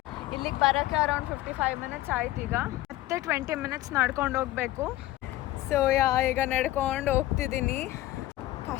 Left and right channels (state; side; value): quieter; right; 16.2 dB